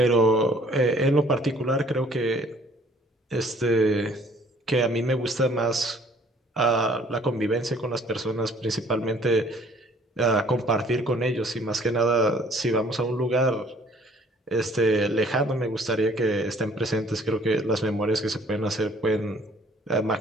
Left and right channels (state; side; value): normal; both; correlation 0.58